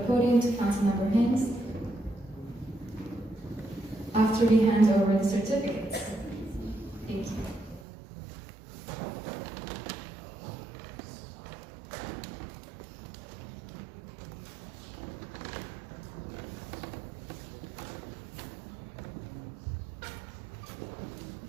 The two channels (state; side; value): drops out; left; at 7.9 s